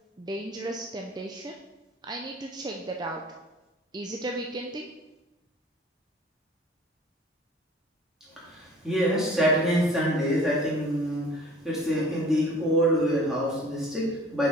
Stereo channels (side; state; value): both; normal; correlation 0.48